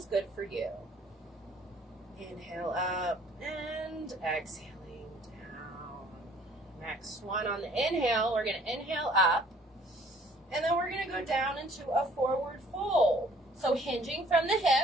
good for you. Inhale up and exhaling down. Next one on the inhale, we're going to inhale up. And then we're going to go down into a forward fold. So hinging from the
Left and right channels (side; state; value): both; normal; correlation 0.57